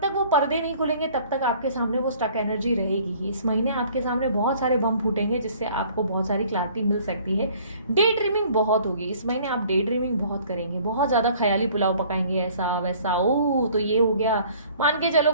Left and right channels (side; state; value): both; inverted; correlation -0.54